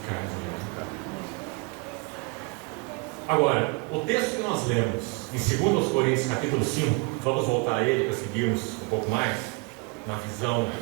carne de minha carne. Agora, o texto que nós lemos em 2 Coríntios capítulo 5, vamos voltar a ele para seguirmos um pouco mais na visão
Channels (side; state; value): left; quieter; 30.0 dB